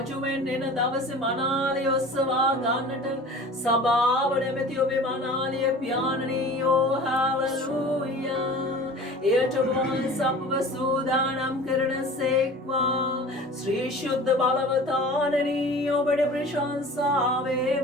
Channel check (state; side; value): normal; both; correlation 0.41